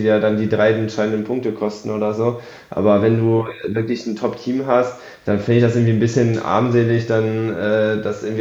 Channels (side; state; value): both; identical; correlation 1.00